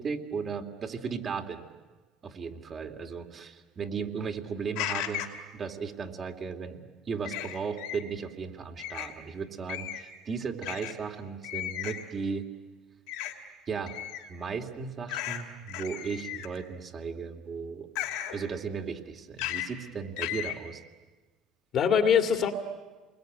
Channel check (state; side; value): normal; both; correlation 0.53